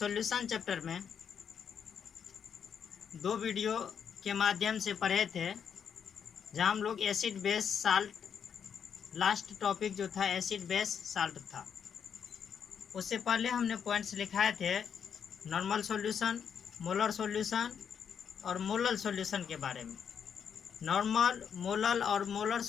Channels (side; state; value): right; quieter; 7.6 dB